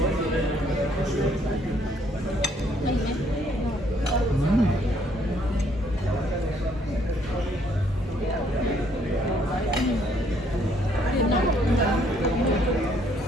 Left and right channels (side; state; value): both; normal; correlation 0.67